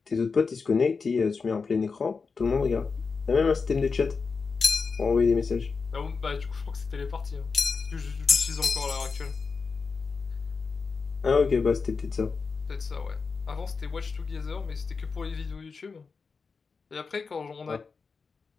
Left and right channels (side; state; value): right; quieter; 4.9 dB